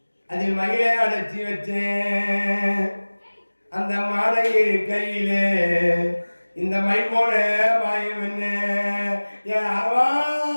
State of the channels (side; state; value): both; inverted; correlation -1.00